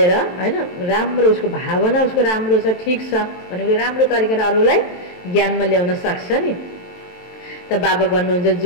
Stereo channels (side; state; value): right; late; 23 ms